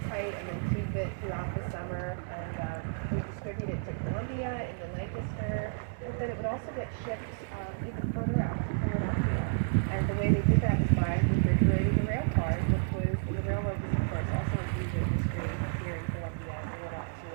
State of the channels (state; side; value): silent; left; digital silence